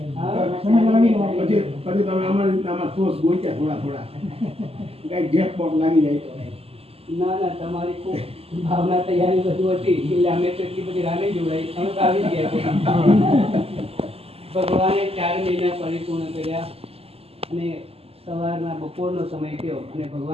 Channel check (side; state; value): left; late; 0.29 ms